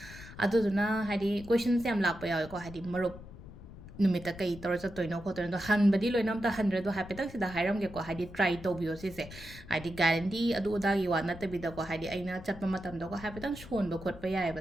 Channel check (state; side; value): noise; left; rumble, 16 dB below the sound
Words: अदुदुना हाइदि क्वेश्चन्स याम लाक्पा यावेको हाइदि मरुप नुमिता कई तौर चतोइनो खोतोइनो हनबदी लोइनम ता हंड्रेड हाइपेतक सिदा हाइरमगेको हाइदि ट्राई तौबियो सिसे हाइदि गारंटी अदु उदागी वा नतबिदको हाइदि अइना चटपा मतमदको हाइपेतक सोनबो खोटपा